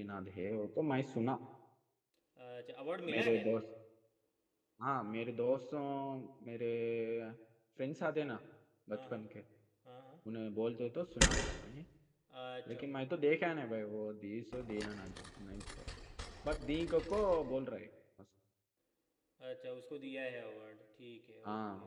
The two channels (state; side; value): identical; both; correlation 1.00